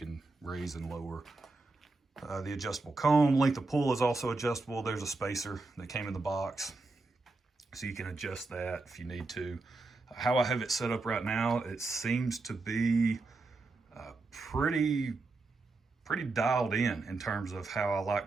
raise and lower the adjustable comb. Length of pull is also adjustable. There's a spacer that came in the box, so you can adjust that if you need to. How I have it set up right now, it seems to be pretty dialed in terms of how I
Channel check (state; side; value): quieter; left; 3.5 dB